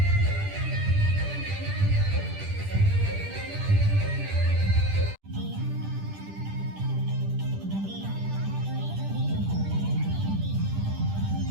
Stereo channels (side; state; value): left; late; 10 ms